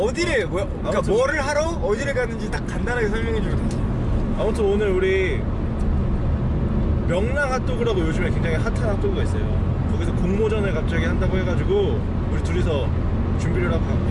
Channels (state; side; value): identical; both; correlation 1.00